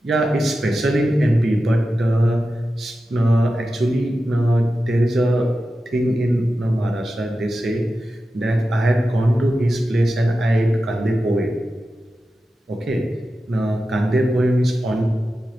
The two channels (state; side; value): normal; both; correlation 0.92